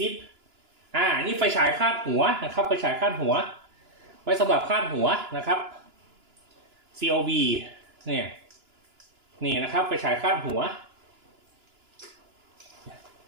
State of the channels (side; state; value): left; late; 2.9 ms